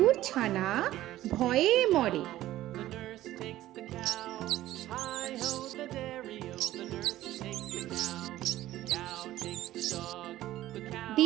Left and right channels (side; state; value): left; quieter; 14.7 dB